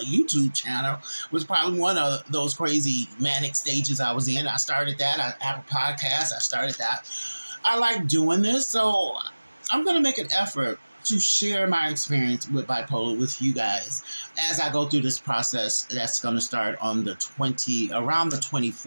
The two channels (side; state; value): both; inverted; correlation -1.00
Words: YouTube channel was probably one of those crazy manic stages I was in. I started that. I have a podcast. I started that. I like doing this, so I'm going to make an effort to share my experience with bipolar with you guys as I go through this process that's going to start on around the